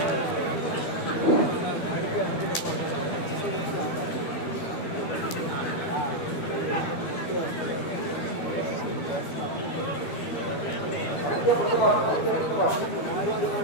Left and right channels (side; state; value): right; late; 13 ms